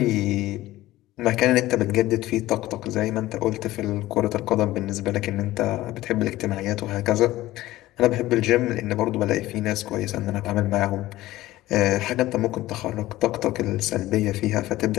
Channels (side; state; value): right; quieter; 16.4 dB